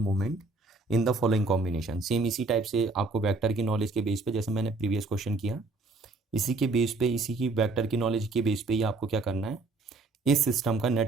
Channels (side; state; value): left; quieter; 3.6 dB